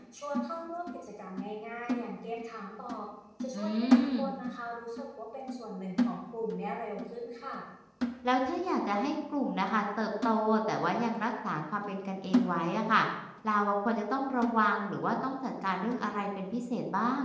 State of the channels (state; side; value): identical; both; correlation 1.00